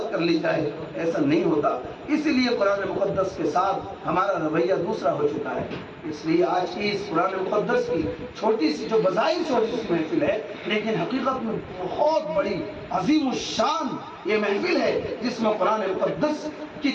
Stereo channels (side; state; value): both; identical; correlation 1.00